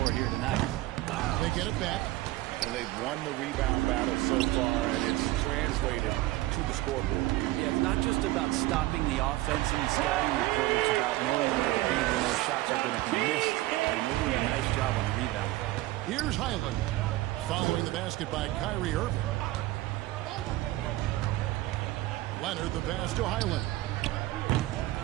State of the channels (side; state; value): left; quieter; 17.4 dB